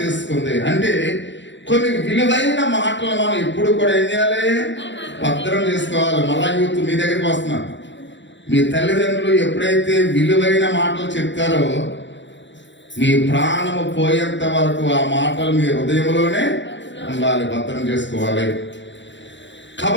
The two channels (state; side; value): late; right; 0.53 ms